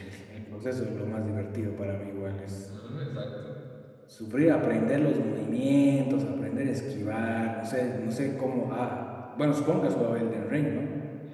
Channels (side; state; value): both; identical; correlation 1.00